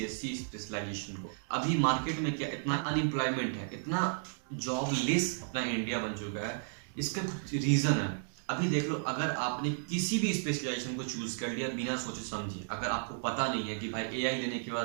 स्पेशलाइजेशन को। अभी मार्केट में क्या इतना अनएम्प्लॉयमेंट है, इतना जॉबलेस अपना इंडिया बन चुका है, इसका कुछ रीजन है। अभी देख लो, अगर आपने किसी भी स्पेशलाइजेशन को चूज कर लिया बिना सोचे समझे, अगर आपको पता नहीं है कि भाई एआई लेने के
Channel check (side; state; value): left; silent; digital silence